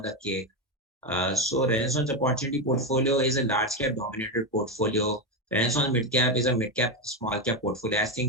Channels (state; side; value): normal; both; correlation 0.11